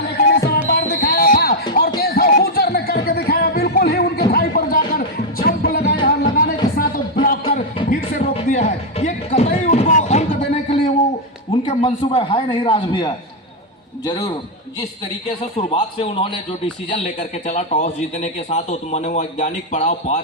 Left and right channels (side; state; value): both; normal; correlation 0.00